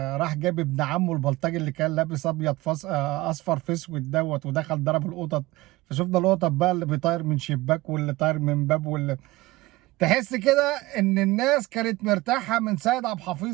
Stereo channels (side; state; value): left; quieter; 19.6 dB